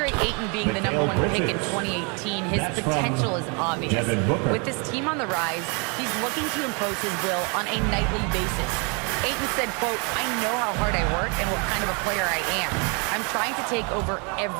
Ayton being the #1 pick in 2018, his potential is obvious. With this team on the rise, he's looking to impose his will on a nightly basis. Ayton said, quote, "I know how hard I work and what kind of a player I am. I'm trying to take over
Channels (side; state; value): left; quieter; 34.1 dB